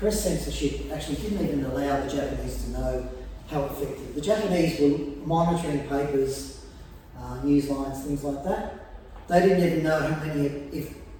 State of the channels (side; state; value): both; identical; correlation 1.00